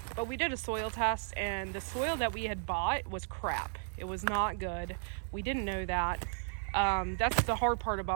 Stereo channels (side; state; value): left; silent; 55 dB below the other